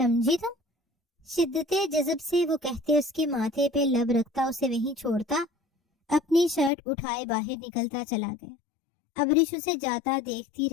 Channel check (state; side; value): drops out; right; at 6.7 s